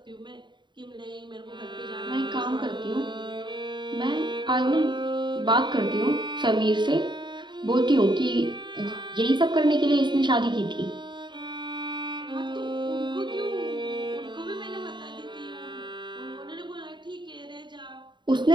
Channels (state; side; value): late; left; 0.22 ms